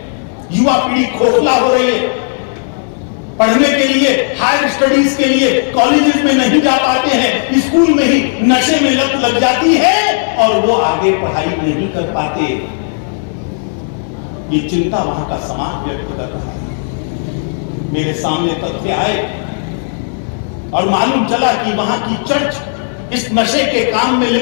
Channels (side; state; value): right; silent; digital silence